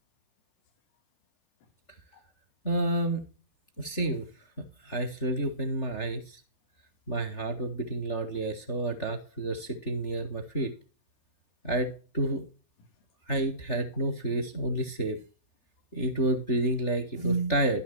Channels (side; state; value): right; late; 3.4 ms